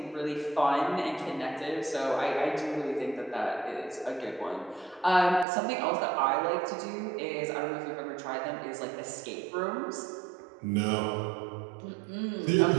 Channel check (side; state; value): left; drops out; at 5.5 s